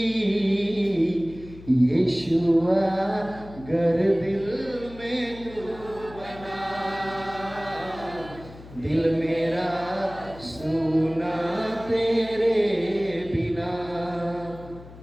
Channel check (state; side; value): noise; left; hum, 18 dB below the sound